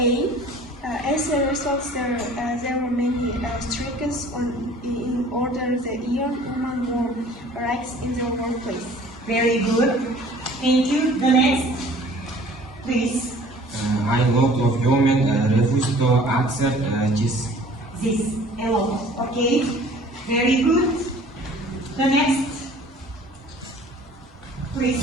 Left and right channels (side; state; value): both; normal; correlation 0.50